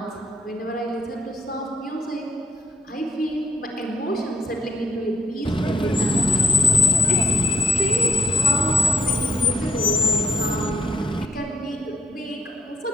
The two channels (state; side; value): normal; both; correlation 0.68